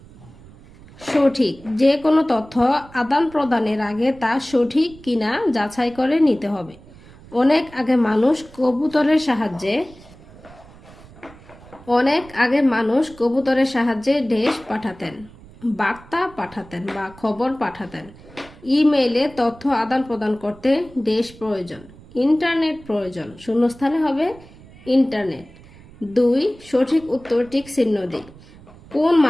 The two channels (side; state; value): right; noise; rumble, 22 dB below the sound